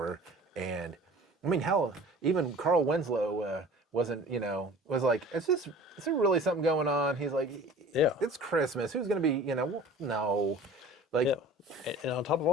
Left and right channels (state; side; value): normal; both; correlation 0.44